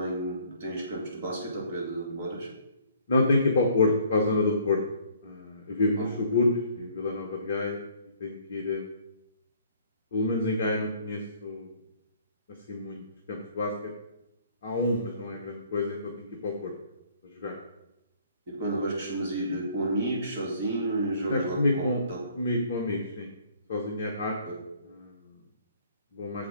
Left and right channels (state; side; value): inverted; both; correlation -0.59